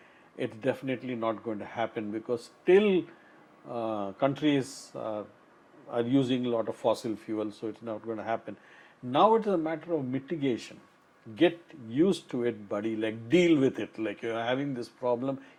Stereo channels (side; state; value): both; identical; correlation 1.00